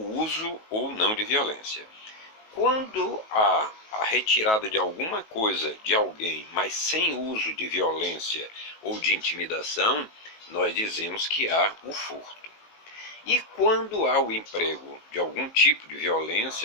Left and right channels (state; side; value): late; right; 19 ms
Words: uso ou não de violência. Quando há a retirada de alguma coisa de alguém, mas sem uso de violência ou de intimidação, nós dizemos que há o furto. E quando há o emprego de algum tipo de